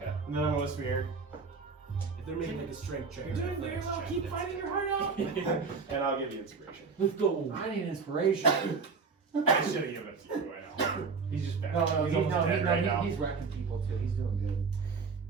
okay. And then I'm gonna whisper here, If they're making like a strength check, You're or doing very athletics well. check, Keep that's fighting it. your heart out. and I'll give you inspiration. Let's go. I need inspiration. I should have given it to you right now. He's just bad. No, He's almost dead right now. he's wrecking people too. He's doing good.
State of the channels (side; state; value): left; quieter; 4.9 dB